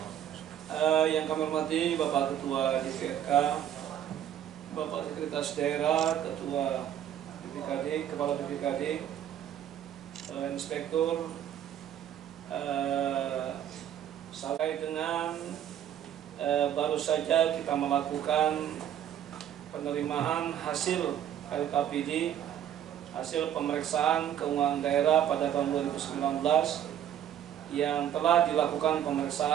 Yang kami hormati Bapak Ketua DPRK, Bapak Sekretaris Daerah, Ketua BPKD, Kepala BPKD, Inspektur, sampai dengan baru saja kita melakukan penerimaan hasil LKPD, hasil pemeriksaan keuangan daerah pada tahun 2019 yang telah dilakukan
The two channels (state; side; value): quieter; left; 10.3 dB